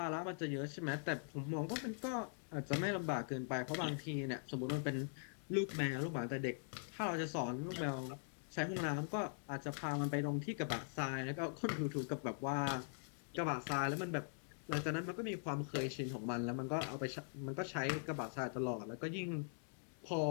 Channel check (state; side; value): silent; right; digital silence